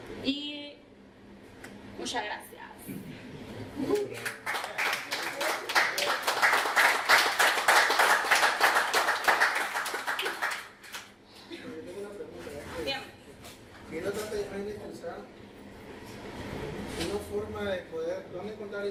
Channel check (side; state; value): both; identical; correlation 1.00